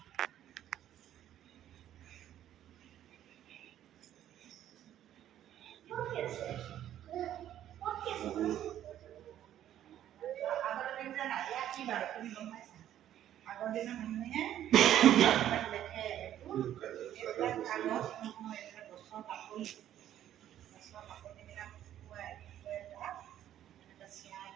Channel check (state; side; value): quieter; left; 11.5 dB